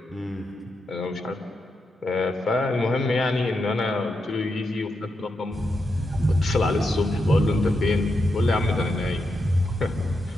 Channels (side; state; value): both; normal; correlation 0.85